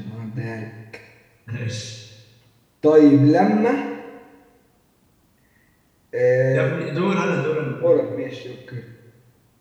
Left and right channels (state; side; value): identical; both; correlation 1.00